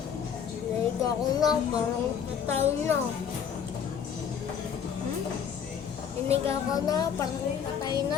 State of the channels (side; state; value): right; quieter; 7.7 dB